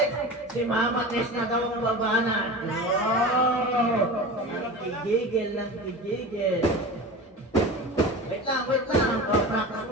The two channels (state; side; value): normal; both; correlation 0.32